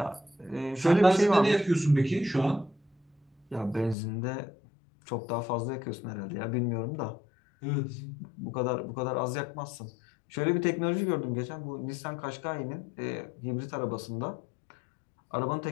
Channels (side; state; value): right; drops out; at 4.0 s